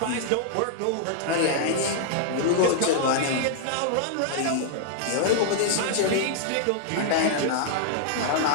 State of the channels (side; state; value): both; different; correlation -0.01